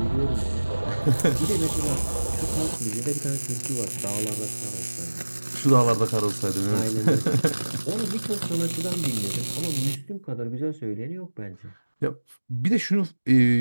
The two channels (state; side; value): inverted; both; correlation -1.00